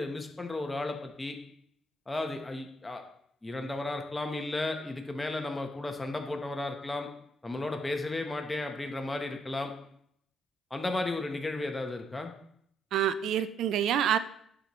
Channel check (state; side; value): normal; both; correlation 0.72